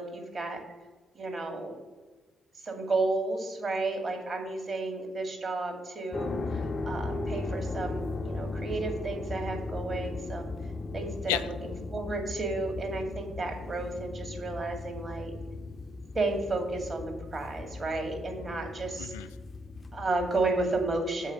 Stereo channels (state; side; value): normal; both; correlation 0.76